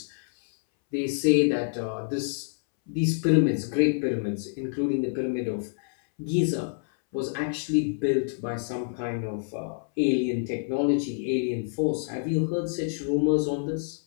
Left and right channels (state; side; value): silent; right; 60 dB below the other